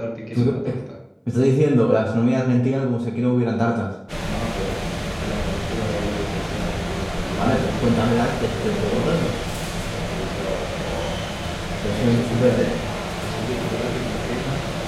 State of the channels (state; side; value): identical; both; correlation 1.00